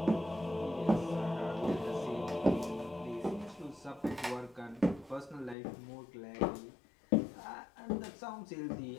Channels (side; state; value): right; drops out; at 5.6 s